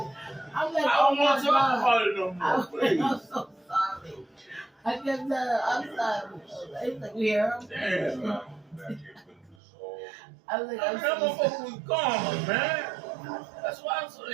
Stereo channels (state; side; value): drops out; left; at 9.6 s